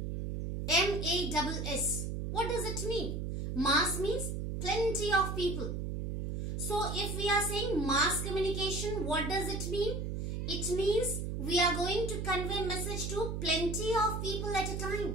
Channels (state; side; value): noise; right; hum, 3 dB below the sound